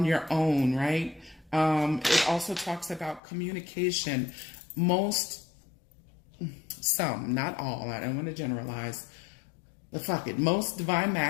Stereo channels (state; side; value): drops out; right; at 3.2 s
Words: your own, right? It also talks about communication. Some, not all, I don't want to generalize, but fuck it, most divine